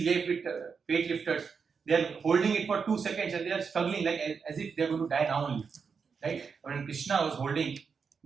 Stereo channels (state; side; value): quieter; left; 5.8 dB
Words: weightlifters, they are holding it for 2 seconds and they are struggling like as if they are going to die now only. Right? When Krishna was holding